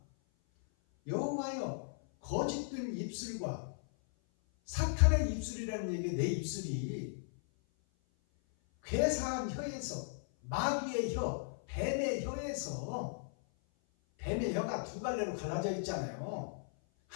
여호와여, 거짓된 입술과, 사탄의 입술이라는 얘기, 내 입술이 괴사한 혀에서, 마귀의 혀, 뱀의 혀에서, 뱀의 혀가 두 갈래로 갈라져 있잖아요.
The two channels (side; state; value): right; silent; 53 dB below the other